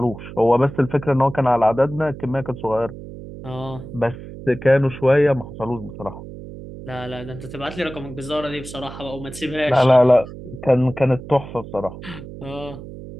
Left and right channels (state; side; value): noise; right; hum, 13 dB below the sound